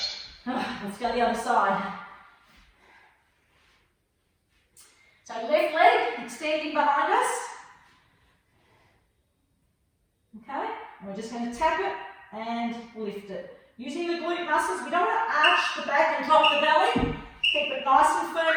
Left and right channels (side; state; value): both; identical; correlation 1.00